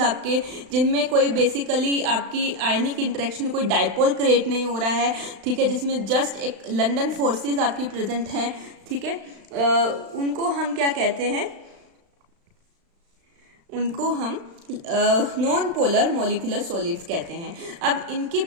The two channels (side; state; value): left; late; 35 ms